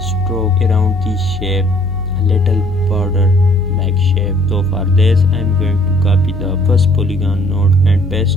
around this shape, a little border like shape. So for this I am going to copy the first polygon node and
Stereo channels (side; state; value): left; noise; hum, 11 dB below the sound